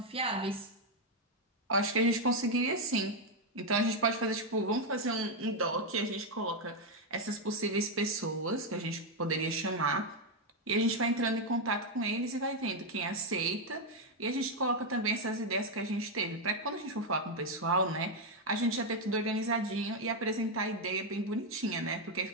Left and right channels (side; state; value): both; normal; correlation 0.03